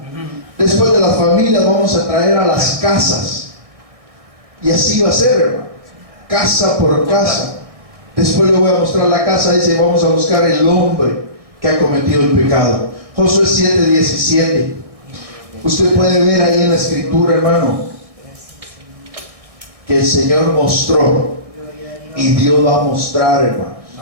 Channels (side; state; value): left; late; 1.6 ms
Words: Después de las familias vamos a traer a las casas, y así va a ser, hermano, casa por casa. Después le voy a mostrar la casa, dice: vamos a buscar el hombre que ha cometido el pecado. Josué 7:17. Usted puede ver ahí en la escritura, hermano, que el Señor mostró, y Dios va a mostrar, hermano.